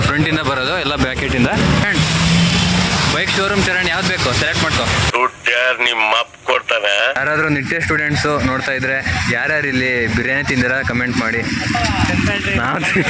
ಫ್ರಂಟಿಂದ ಬರೋದು ಎಲ್ಲ ಬ್ಯಾಕೆಟಿಂದ. ಬೈಕ್ ಶೋರೂಮ್ ಚರಣ್ ಯಾವ್ದು ಬೇಕು ಸೆಲೆಕ್ಟ್ ಮಾಡ್ಕೋ. ನಿಮ್ಮ ಅಪ್ಪ ಕೊಡ್ತಾನೆ. ಯಾರಾದರೂ ನಿಟ್ಟೆ ಸ್ಟೂಡೆಂಟ್ಸು ನೋಡ್ತಾ ಇದ್ರೆ ಯಾರ್ಯಾರು ಇಲ್ಲಿ ಬಿರಿಯಾನಿ ತಿಂದಿರ ಕಮೆಂಟ್ ಮಾಡಿ. ನಾವು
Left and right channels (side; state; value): both; identical; correlation 1.00